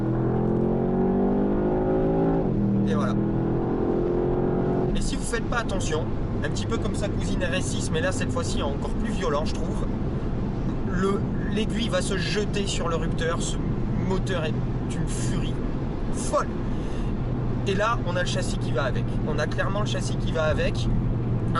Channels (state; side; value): identical; both; correlation 1.00